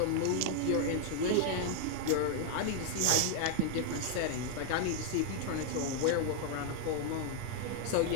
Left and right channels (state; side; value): different; both; correlation 0.00